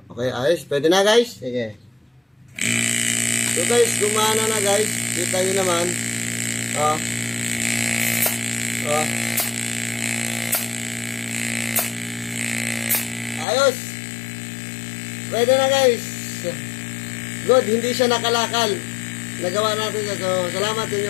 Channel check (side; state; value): right; drops out; at 13.5 s